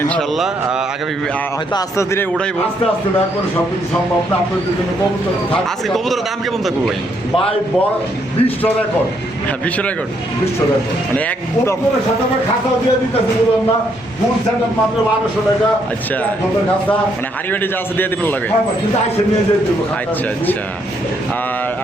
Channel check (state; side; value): normal; both; correlation 0.73